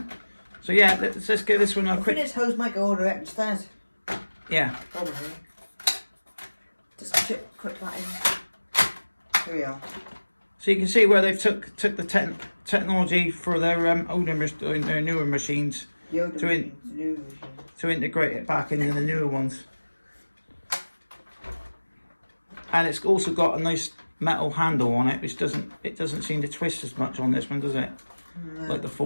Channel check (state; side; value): inverted; both; correlation -1.00